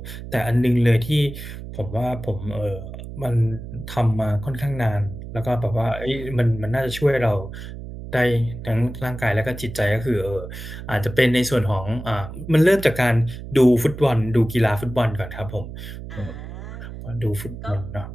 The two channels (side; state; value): right; noise; hum, 11 dB below the sound